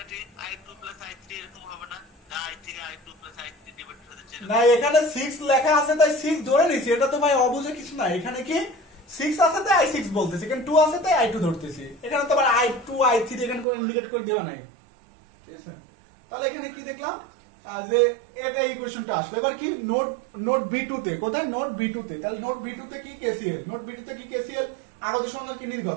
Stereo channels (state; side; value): drops out; left; at 13.7 s